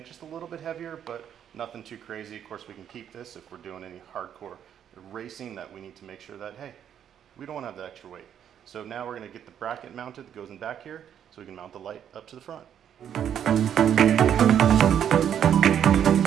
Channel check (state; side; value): quieter; left; 9.3 dB